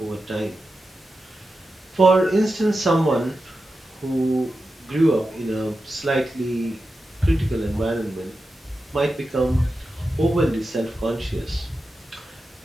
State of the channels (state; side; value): normal; both; correlation 0.91